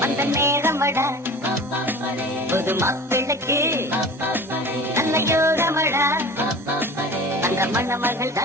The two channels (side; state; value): both; normal; correlation 0.38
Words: அந்த நேரமடா. புது மாப்பிள்ளைக்கு நல்ல யோகமடா, அந்த மண்ண மகள்தா